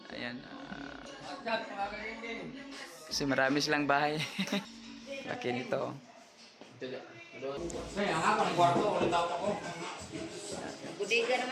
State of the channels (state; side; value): identical; both; correlation 1.00